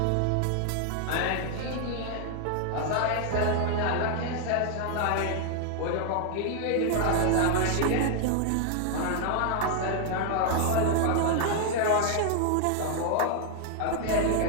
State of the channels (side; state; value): both; different; correlation 0.00